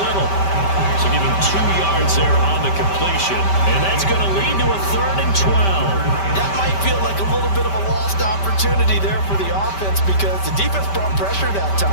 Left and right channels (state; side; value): late; right; 5.1 ms